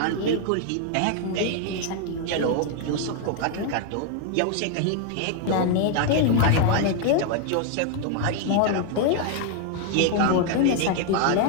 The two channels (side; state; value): both; different; correlation 0.00